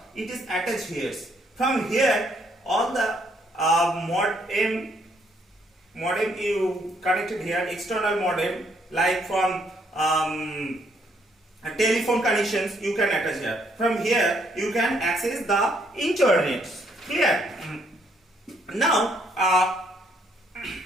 It is attached here. From here, all the modem you connected here, external modem, like from telephone connections you can attach here. From here you can access the internet. Clear? Now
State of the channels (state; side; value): normal; both; correlation 0.70